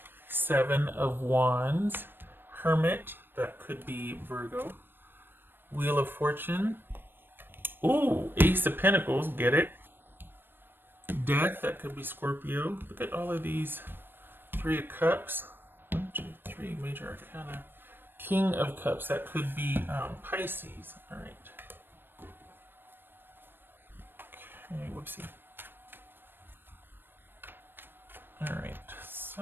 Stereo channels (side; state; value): left; late; 0.10 ms